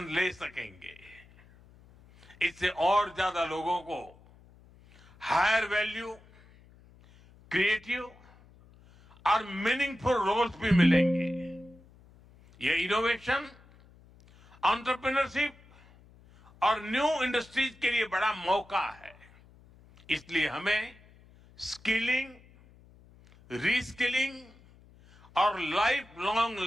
ले सकेंगे। इससे और ज्यादा लोगों को हायर वैल्यू, क्रिएटिव और मीनिंगफुल रोल्स भी मिलेंगे। ये इनोवेशन, एंटरप्रेन्योरशिप और न्यू इंडस्ट्रीज के लिए बड़ा मौका है। इसलिए हमें स्किलिंग, रीस्किलिंग और लाइफ लॉन्ग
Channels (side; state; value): left; noise; hum, 26 dB below the sound